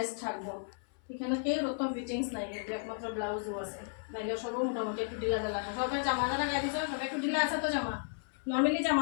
থাকবো, এখানে কেউ অত ফিটিংস নাই, কিন্তু একমাত্র ব্লাউজও আছে, নাইলে সবও মোটামুটি একটু ঢিলা ঢালা আছে। সবাই জামা যারা গায়ে দিচ্ছে সবাই একটু ঢিলা আছে তো জামা, নর্মালি জামা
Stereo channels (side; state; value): right; silent; 55 dB below the other